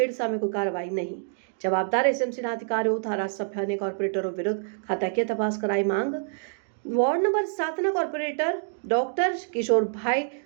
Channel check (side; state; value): left; silent; digital silence